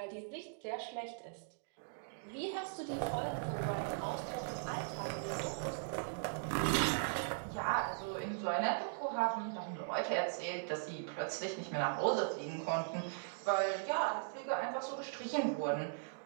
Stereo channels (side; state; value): left; silent; digital silence